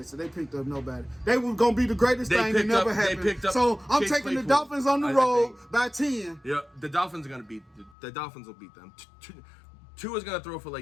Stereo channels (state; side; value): drops out; right; at 8.0 s